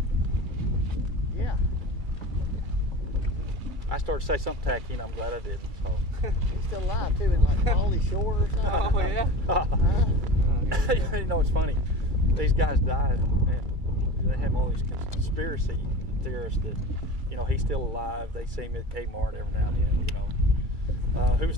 Yeah. I started to say something tacky, and I'm glad I didn't. So. He's still alive too, in like Pauly Shore or something. Oh, yeah? It's funny. These guys died, and they have all these conspiracy theorists that, he's still alive. They see him at Kmart every now and then. Who's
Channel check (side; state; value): left; late; 2.3 ms